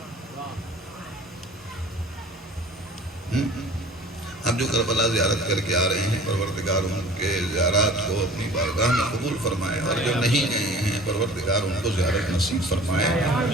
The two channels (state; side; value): normal; both; correlation 0.45